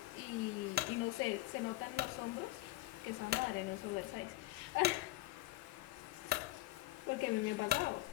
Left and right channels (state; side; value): quieter; right; 17.6 dB